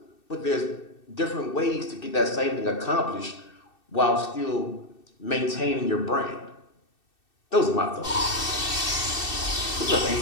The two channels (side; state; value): right; late; 2.6 ms